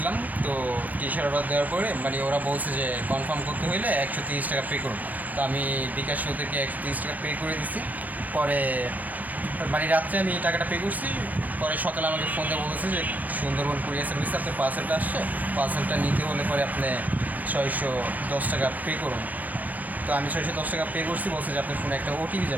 তো T-shirt order দেওয়ার পরে মানে ওরা বলছে যে কনফার্ম করতে হইলে 130 টাকা পে করুন। তো আমি বিকাশ ওদেরকে 130 টাকা পে করে দিছি। পরে মানে রাত্রে আমি টাকাটা পে করছি। পরে সকালে আমাকে ফোন দিয়ে বলেছে যে সুন্দরবন কুরিয়ার সার্ভিসে আপনার পার্সেলটা আসছে, পার্সেলটা নিতে হলে পরে আপনি 610 টাকা পে করুন। তো আমি 610 টাকা পে করছি, বলছে যে আপনার ফোনে একটা ওটিপি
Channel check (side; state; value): left; late; 0.080 ms